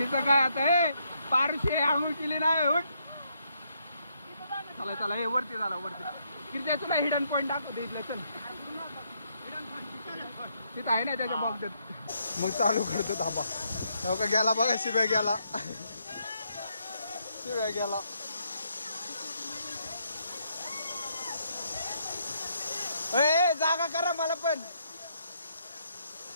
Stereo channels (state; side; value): inverted; both; correlation -0.75